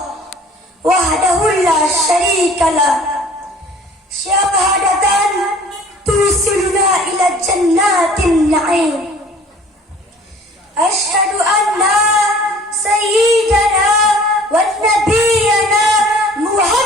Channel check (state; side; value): normal; both; correlation 0.49